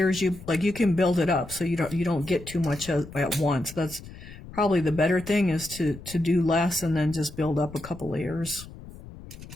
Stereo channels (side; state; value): left; noise; rumble, 16 dB below the sound